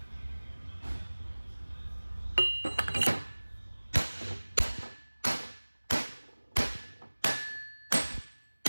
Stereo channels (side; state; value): both; inverted; correlation -1.00